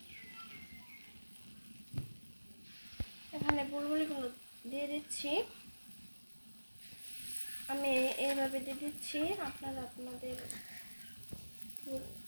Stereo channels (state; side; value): inverted; both; correlation -1.00